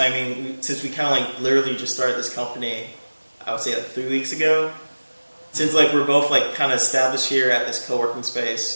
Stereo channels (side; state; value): both; inverted; correlation -1.00